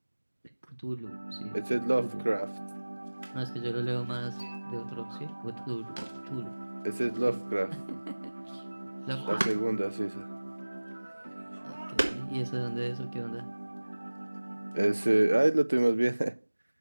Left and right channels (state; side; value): inverted; both; correlation -1.00